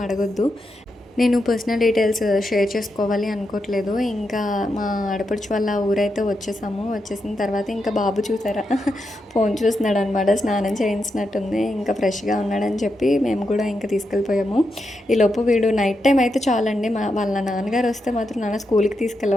అడగొద్దు, నేను పర్సనల్ డీటెయిల్స్ షేర్ చేసుకోవాలి అనుకోవట్లేదు. ఇంకా మా ఆడపడుచు వాళ్ళ ఊరైతే వచ్చేసాము. వచ్చేసిన తర్వాత ఇంకా బాబు చూసారా ఫోన్ చూస్తున్నాడు అనమాట, స్నానం చేయించినట్టుంది, ఇంకా ఫ్రెష్గా ఉన్నాడని చెప్పి మేము కూడా ఇంకా తీసుకెళ్ళిపోయాము. ఈలోపు వీడు నైట్ టైం అయితే చాలండి, వాళ్ళ నాన్నగారు వస్తే మాత్రం నాన్న స్కూల్కి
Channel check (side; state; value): both; normal; correlation 0.85